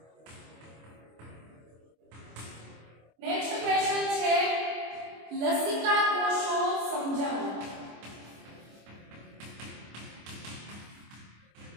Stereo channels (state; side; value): late; left; 25 ms